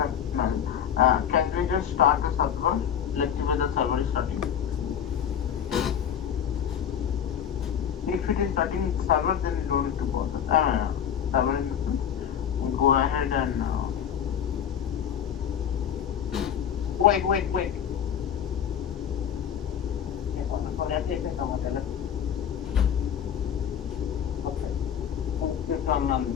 Can we just start the server? Let's see where the server is starting. If it is starting server, then you don't need to bother. Server in this one. Go ahead and. Wait.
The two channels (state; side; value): quieter; right; 8.7 dB